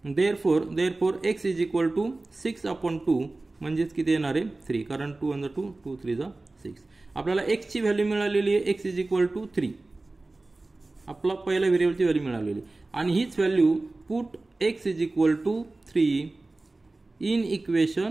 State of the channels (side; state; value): left; quieter; 3.1 dB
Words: therefore x is equal to 6/2 म्हणजेच किती येणार आहे? 3. कारण 2 × 2 2 3 6. आपल्याला x ची व्हॅल्यू मिळालेली आहे. x is equal to 3. आपला पहिल्या व्हेरिएबलची व्हॅल्यू मिळालेली आणि हीच value put x is equal to 3 in